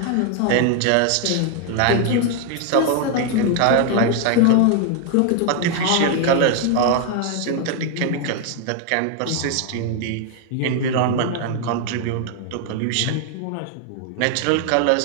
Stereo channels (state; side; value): different; both; correlation 0.00